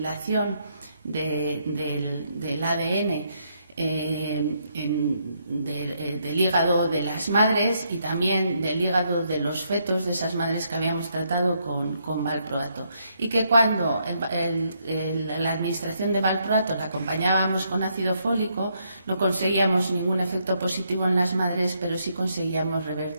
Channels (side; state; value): both; inverted; correlation -0.75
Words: del ADN del hígado de las madres, y también del hígado de los fetos de esas madres que habíamos tratado con valproato, y que cuando la administración de valproato la acompañábamos con ácido fólico no conseguíamos ningún efecto positivo en las madres, pero sí conseguíamos